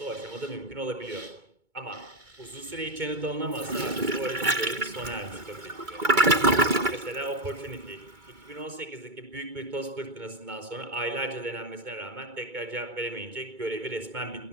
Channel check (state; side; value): late; left; 2.2 ms